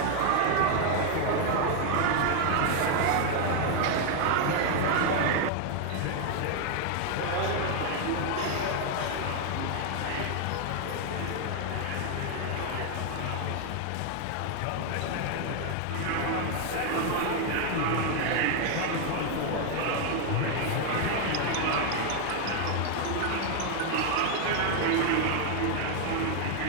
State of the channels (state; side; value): different; both; correlation 0.01